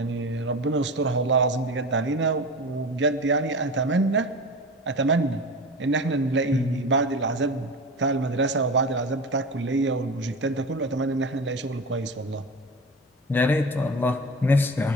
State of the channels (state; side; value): normal; both; correlation 0.30